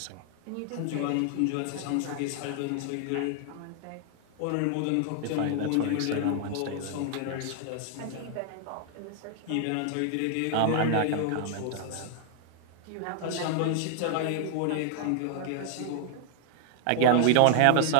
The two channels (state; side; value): different; both; correlation 0.00